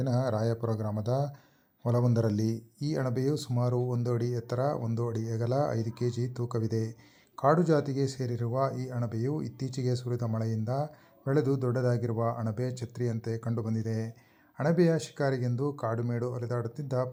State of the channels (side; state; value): both; identical; correlation 1.00